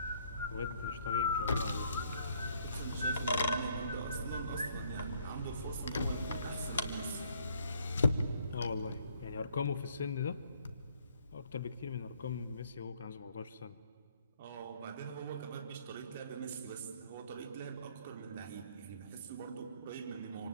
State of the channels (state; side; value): inverted; both; correlation -0.65